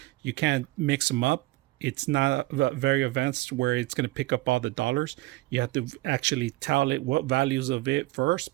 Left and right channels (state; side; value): quieter; left; 19.5 dB